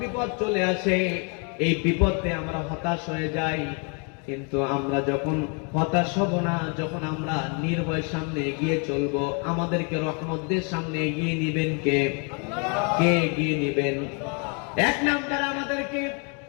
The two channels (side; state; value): right; quieter; 36.3 dB